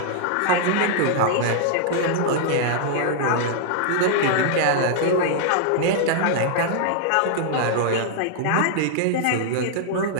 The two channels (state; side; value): different; both; correlation -0.01